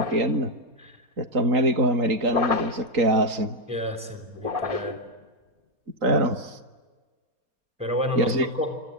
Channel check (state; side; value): late; left; 4.3 ms